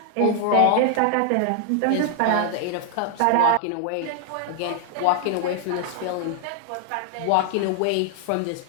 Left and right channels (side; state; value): both; different; correlation 0.00